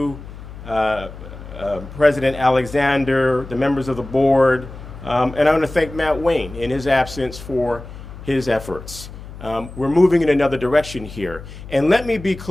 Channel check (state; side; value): noise; left; hum, 14 dB below the sound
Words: President Alexander, the members of the board, and I want to thank Matt Wayne in his absence for his efforts. We're moving in another direction here. And let me be